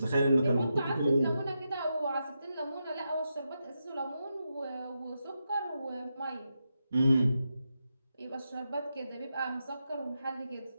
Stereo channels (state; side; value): inverted; both; correlation -0.87